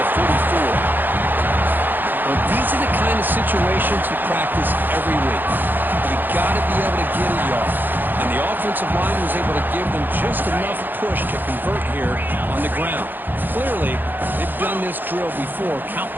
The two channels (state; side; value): late; left; 0.089 ms